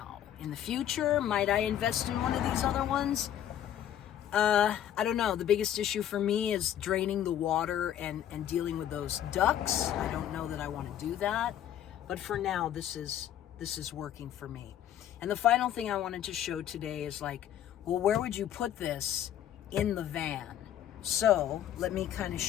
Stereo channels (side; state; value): right; quieter; 10.9 dB